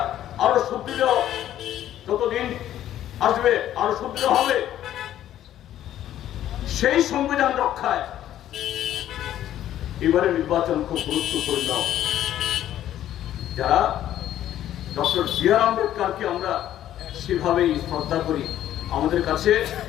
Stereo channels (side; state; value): right; quieter; 12.0 dB